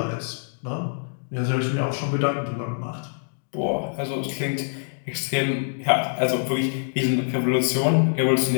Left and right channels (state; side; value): silent; right; digital silence